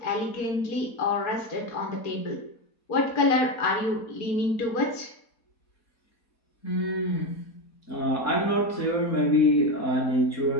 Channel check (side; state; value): right; late; 4.2 ms